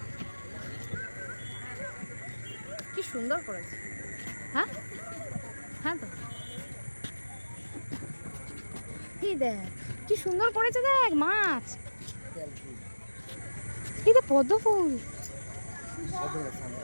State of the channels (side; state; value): both; inverted; correlation -1.00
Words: কি সুন্দর করেছে। হ্যাঁ হ্যাঁ, তো কি দেখ কি সুন্দর করেছে, দেখ মাছ, এই দেখ পদ্ম ফুল,